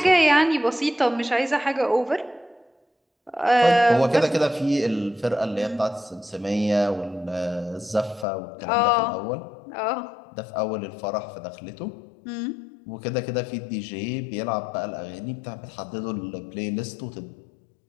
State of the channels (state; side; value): drops out; right; at 8.2 s